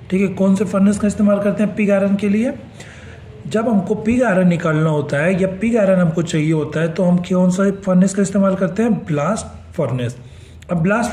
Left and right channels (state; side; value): identical; both; correlation 1.00